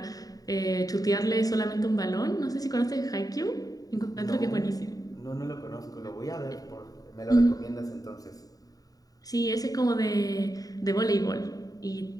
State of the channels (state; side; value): late; right; 0.18 ms